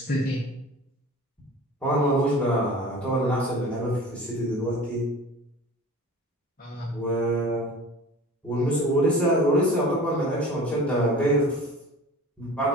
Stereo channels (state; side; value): normal; both; correlation 0.40